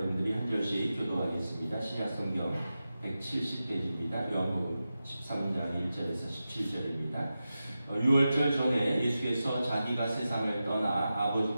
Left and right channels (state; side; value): inverted; both; correlation -0.93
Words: 한 절씩 교도하겠습니다. 신약성경 170페이지입니다. 요한복음 13장 1절에서 17절입니다. 6월절 전에 예수께서 자기가 세상을 떠나